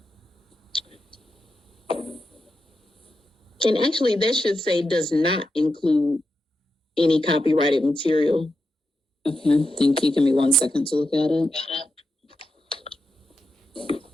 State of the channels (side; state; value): both; normal; correlation 0.88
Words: And actually, that should say does not include any copyrighted material. Okay, thank you. Give me 1 second to look at it.